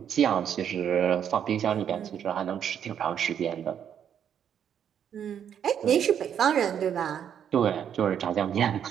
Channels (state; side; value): quieter; left; 8.8 dB